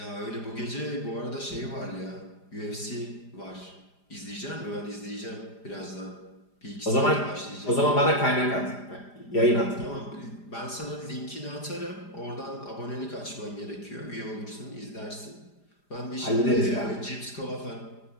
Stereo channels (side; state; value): right; late; 4.9 ms